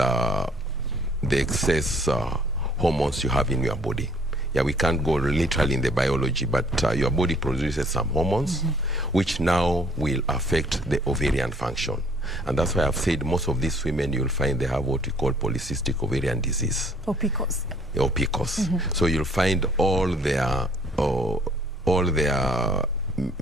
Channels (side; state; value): both; normal; correlation 0.60